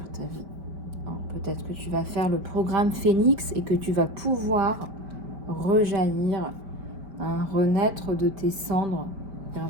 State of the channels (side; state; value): left; late; 5.1 ms